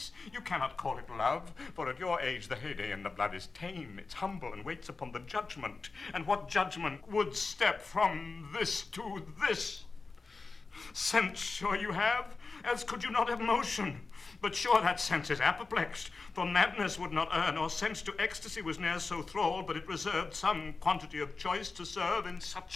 You cannot call it love, for at your age the heyday in the blood is tame. It's humble and waits upon the judgment. And what judgment would step from this to this? Sense sure you have, else could you not have motion. But sure that sense is apoplexed, for madness would not err, nor sense to ecstasy was ne'er so thrall, but it reserved some quantity of choice to serve in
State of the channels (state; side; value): quieter; right; 4.1 dB